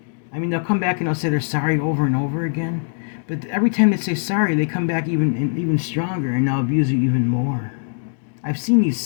they'll come back and they'll say they're sorry over and over again. But every time they say sorry, they come back even stronger and they'll abuse you even more. I've seen these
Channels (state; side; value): silent; right; digital silence